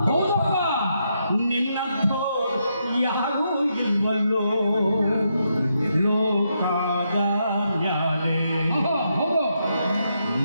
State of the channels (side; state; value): both; inverted; correlation -0.80